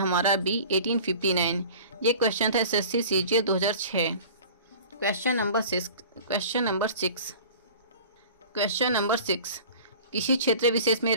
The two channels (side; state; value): both; inverted; correlation -0.41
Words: बी, 1859। ये क्वेश्चन था एसएससी सीजीएल 2006। क्वेश्चन नंबर 6, किसी क्षेत्र विशेष में